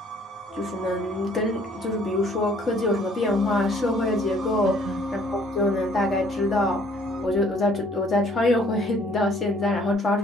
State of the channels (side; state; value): both; normal; correlation 0.60